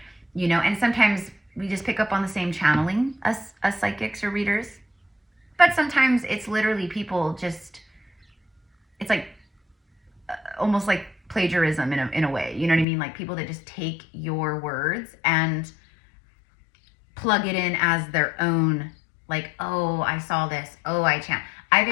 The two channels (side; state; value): right; drops out; at 12.9 s